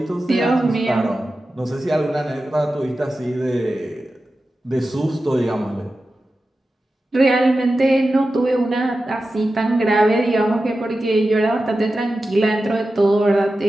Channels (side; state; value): both; normal; correlation 0.93